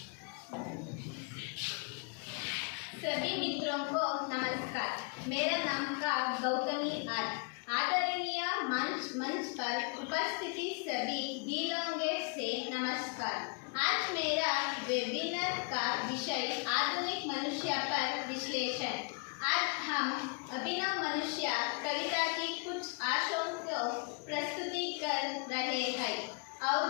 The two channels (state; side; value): quieter; right; 35.3 dB